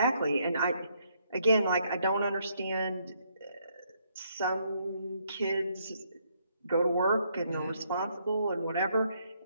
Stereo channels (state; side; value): inverted; both; correlation -0.72